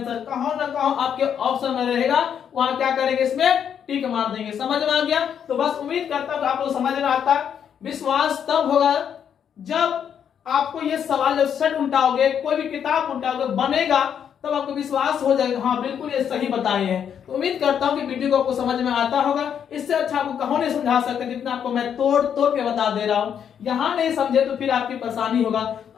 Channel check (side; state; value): right; quieter; 8.3 dB